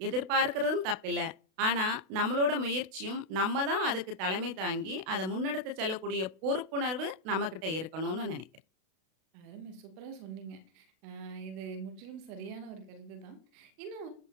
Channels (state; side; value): late; left; 32 ms